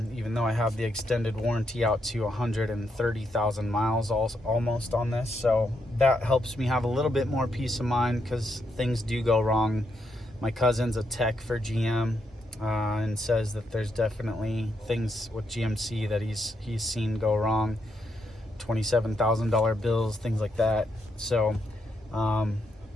though I have the extended warranty out to 130,000 miles almost on this, so that helps me have a little bit more peace of mind because things do go wrong. My cousin's a tech for GM, and says that there's definitely things with GMC that he's seen go wrong, $27,000 bills, things like that. So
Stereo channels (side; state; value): both; normal; correlation 0.79